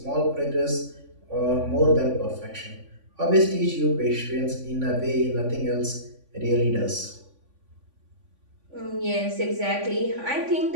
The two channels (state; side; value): late; left; 3.5 ms